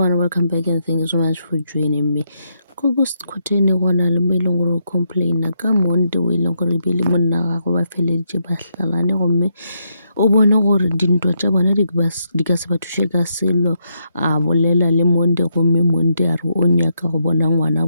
welcome back and thank you so much for joining me. Ko Khoteni go na le mo e leng gore o complaina ka Monday o e leng gore ebile monna wa gagwe ba feleditše ba hlalane gomme o bone gore dintwa tša bona di ka se ba thuše ka selo a bolela le Monday gomme Monday a re o nyaka go bona ngwana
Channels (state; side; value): inverted; both; correlation -0.79